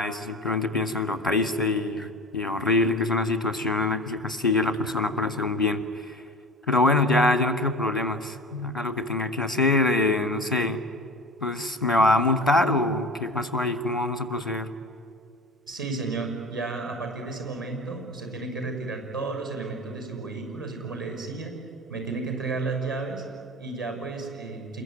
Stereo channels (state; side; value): normal; both; correlation 0.36